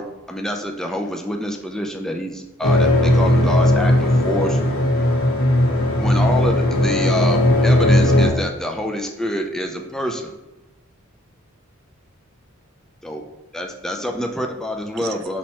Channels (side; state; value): both; normal; correlation 0.67